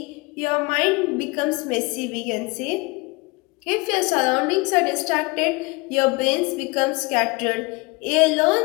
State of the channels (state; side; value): quieter; right; 26.2 dB